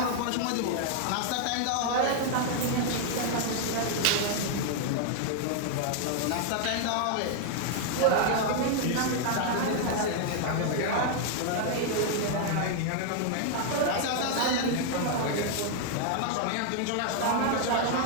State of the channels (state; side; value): different; both; correlation 0.00